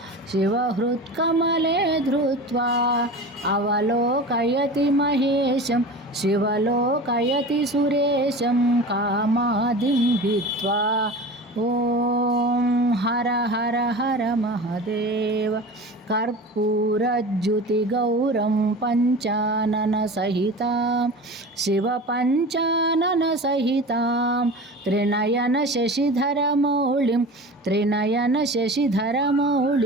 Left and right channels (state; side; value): normal; both; correlation 0.34